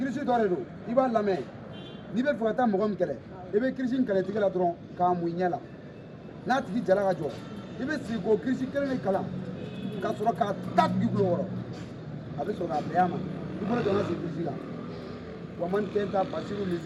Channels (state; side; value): identical; both; correlation 1.00